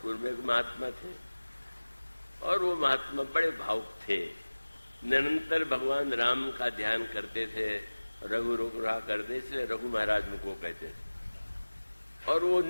में एक महात्मा थे और वो महात्मा बड़े भावुक थे, निरंतर भगवान राम का ध्यान करते थे, रघु रोग रहा करते, इसलिए रघु महाराज उनको कहते थे। और वो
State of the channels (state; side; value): inverted; both; correlation -1.00